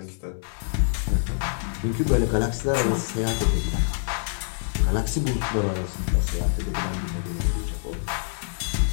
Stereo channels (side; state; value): right; silent; digital silence